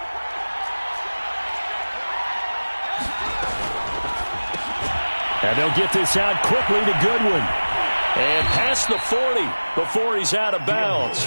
And they'll get this out quickly to Goodwin. And past the 40 before he's out of bounds.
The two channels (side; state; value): both; inverted; correlation -1.00